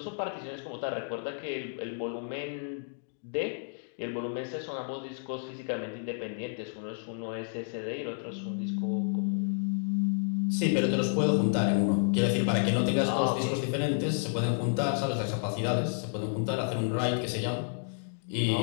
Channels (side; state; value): right; silent; digital silence